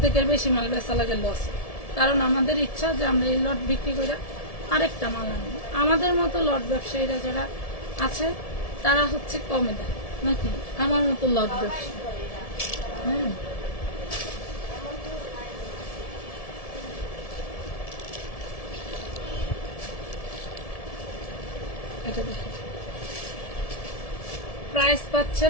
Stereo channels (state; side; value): late; right; 1.7 ms